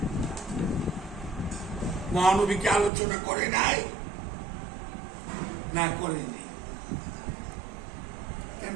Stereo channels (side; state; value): left; drops out; at 2.9 s